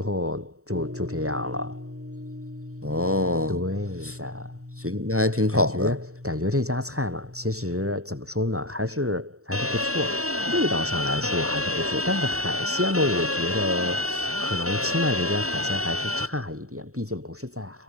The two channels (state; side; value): late; left; 0.64 ms